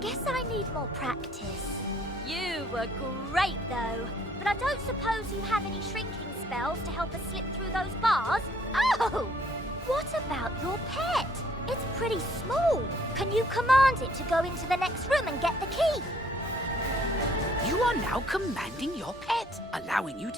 I need more practice. You were great though. But I don't suppose you have any shrinking spells to help us slip through those bars? Oh! What about your pet? It's pretty small. Can you command it to go into the next room and get the key? You are now commanding your pet, allowing you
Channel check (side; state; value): both; normal; correlation 0.62